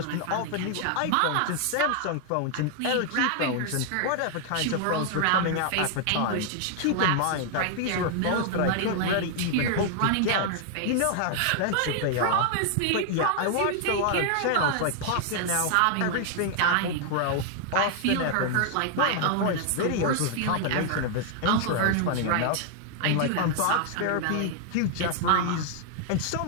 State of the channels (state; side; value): different; both; correlation 0.00